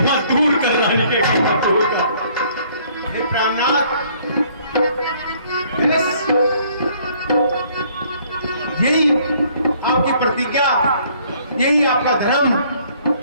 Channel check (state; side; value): inverted; both; correlation -0.61